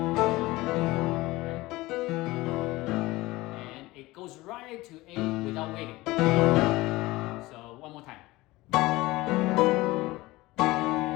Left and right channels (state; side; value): quieter; right; 19.7 dB